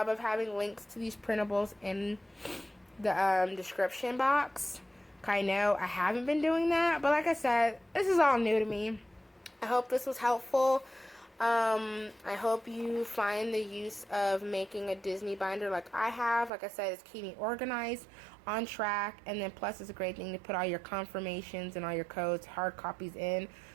of having links to these printables in the description box. I know I haven't been doing that, but like I said, this is all new to me. I hope this was helpful. I hope you find the use of making a Disney binder like I have. Like I said, it's keeping me organized, on track, and then plus it's a great thing to put all your confirmations and all your codes, hard copies in,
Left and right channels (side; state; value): left; drops out; at 16.5 s